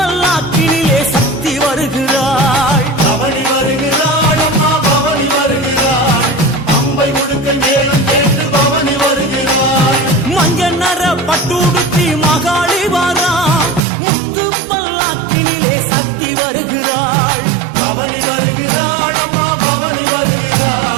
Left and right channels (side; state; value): left; drops out; at 13.8 s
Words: சக்தி வருகிறாள் பவனி வருகிறாள் அம்மா பவனி வருகிறாள் பம்பை உடுக்கை மேளம் கேட்டு பவனி வருகிறாள் மஞ்ச நர பட்டுடுத்தி மகாளி வாரா முத்து பல்லாக்கினிலே சக்தி வருகிறாள் பவனி வருகிறாள் அம்மா பவனி